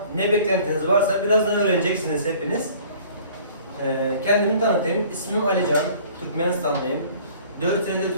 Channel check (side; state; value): both; inverted; correlation -0.51